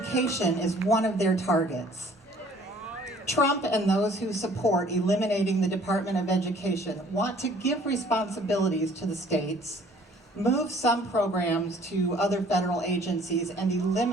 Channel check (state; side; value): normal; both; correlation 0.55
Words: is one of their targets. Trump and those who support eliminating the Department of Education want to give responsibilities to the states, move some programs to other federal agencies, and